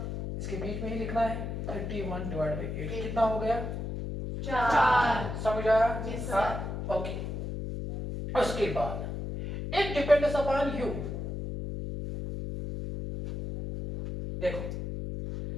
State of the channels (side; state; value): left; noise; hum, 5 dB below the sound